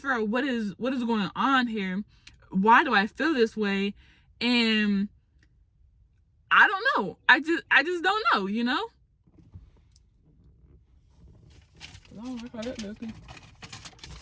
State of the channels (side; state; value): both; identical; correlation 1.00